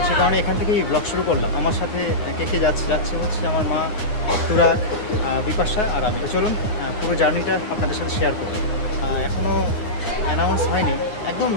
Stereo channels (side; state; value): right; late; 9.4 ms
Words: সে কারণে এখান থেকেই ব্লগ শুরু করলাম। আমার সাথে কে যাচ্ছে হচ্ছে আমার মা, তুরাগ, বিপাশা আর আমি। তো চলুন পুরো জার্নিটা আপনাদের সাথে শেয়ার করব। এখনও অ্যানাউন্স হয়নি, একদম